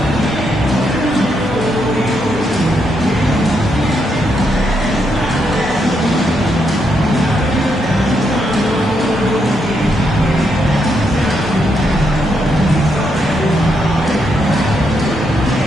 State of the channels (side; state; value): both; normal; correlation 0.79